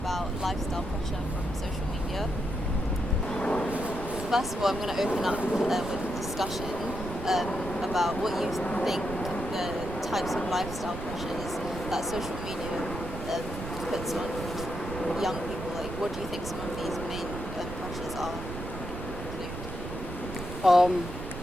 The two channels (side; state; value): right; noise; rumble, 8 dB below the sound